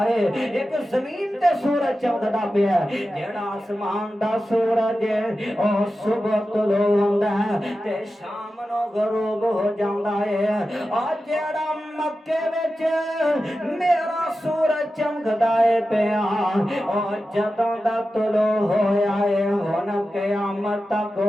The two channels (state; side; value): normal; both; correlation 0.92